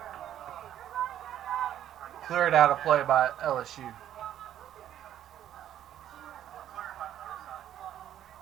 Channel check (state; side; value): quieter; left; 11.2 dB